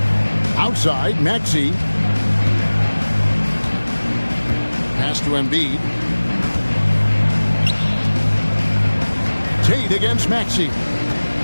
Outside, Maxey. Pass to Embiid. Tate against Maxey.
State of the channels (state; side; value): inverted; both; correlation -1.00